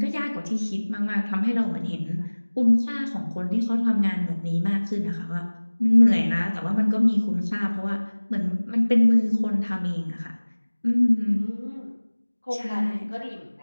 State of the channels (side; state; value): both; inverted; correlation -1.00